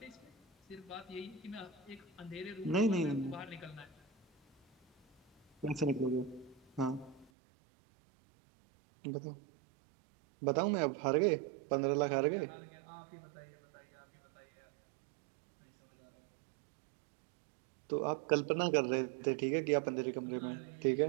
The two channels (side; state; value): left; drops out; at 7.3 s